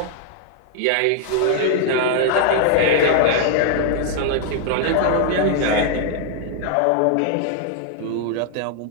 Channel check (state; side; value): different; both; correlation 0.00